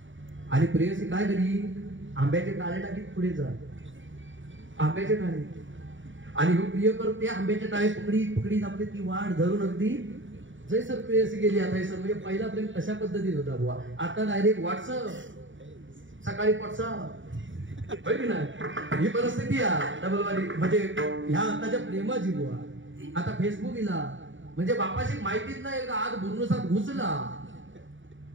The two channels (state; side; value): late; left; 0.56 ms